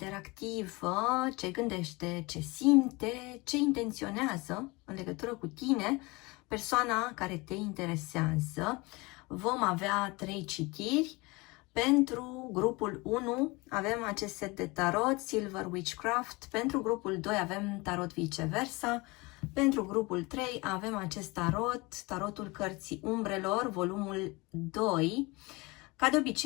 ce gândește, ce simte, ce intenționează în legătură cu tine, persoana care te interesează. Vom avea 3 citiri. Pentru grupul 1 avem acest set de tarot, Silver Witchcraft. Pentru grupul 2 avem tarot viceversa. Pentru grupul 3 avem acest tarot, tarotul cărții umbrelor, volumul 2. Ca de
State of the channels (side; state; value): right; quieter; 24.6 dB